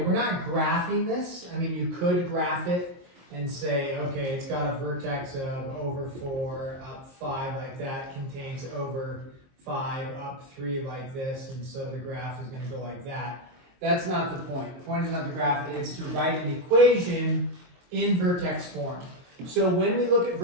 we're not graphing this. I mean, you could graph it and say, okay, it's got a vertex of over 4, up 5 like that, contains over 5, up 3 like this, and so the graph is going to go like that. That's not the point. The point is not to graph it, it's to write an equation in vertex form. So when we look at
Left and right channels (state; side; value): late; left; 23 ms